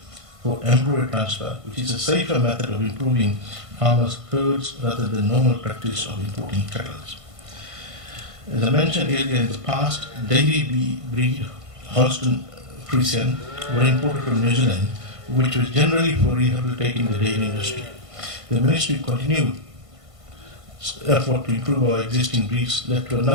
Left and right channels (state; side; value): late; left; 1.5 ms